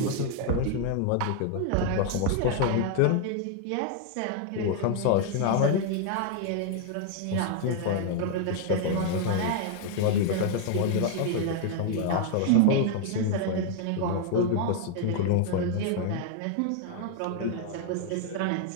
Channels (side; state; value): both; different; correlation 0.00